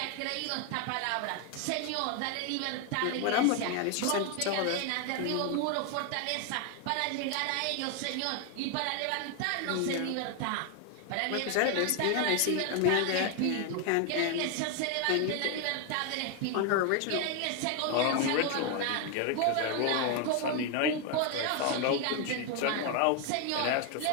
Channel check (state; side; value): different; both; correlation 0.01